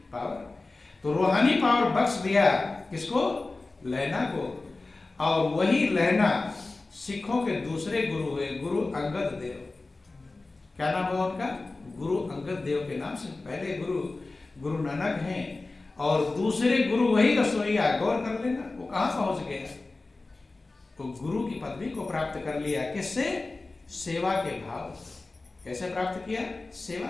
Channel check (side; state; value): right; quieter; 3.4 dB